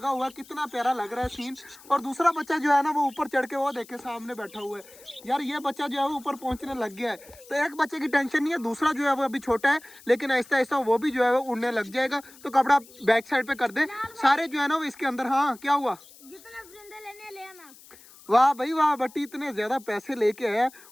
हुआ है, कितना प्यारा लग रहा है सीन। और दूसरा बच्चा जो है ना वो ऊपर चढ़ के वो देखे सामने बैठा हुआ है। यार ये बच्चा जो है वो ऊपर पहुंचने लग गया है, तो एक बच्चे की टेंशन नहीं है, दूसरा जो है वो अभी छोटा है लेकिन ऐसा ऐसा वो भी जो है वो उड़ने लग जाएगा। तो कपड़ा बैक साइड पे कर दे सारे जो है ना वो इसके अंदर। हाँ क्या हुआ? ले आना। वाह भाई वाह, बट्टी इतने ज्यादा पैसे लेके आया।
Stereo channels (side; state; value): left; noise; hiss, 22 dB below the sound